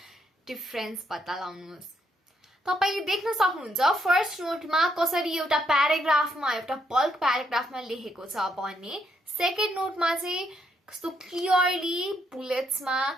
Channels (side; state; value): both; normal; correlation 0.75